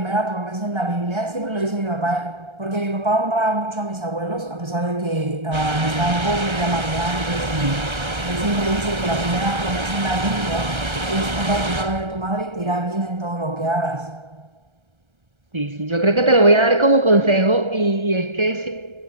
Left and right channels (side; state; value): left; late; 1.3 ms